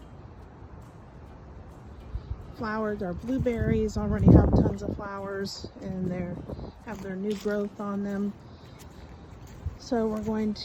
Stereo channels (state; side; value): identical; both; correlation 1.00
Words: flowered. Our blueberries already have tons of flowers, and they have their new growth on them. So we're going